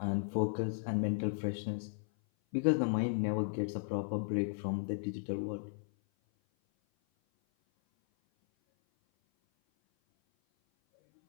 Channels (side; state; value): right; silent; 54 dB below the other